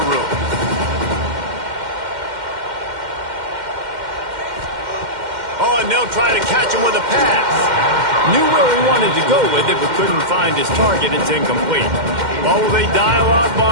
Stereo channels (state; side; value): late; left; 2.1 ms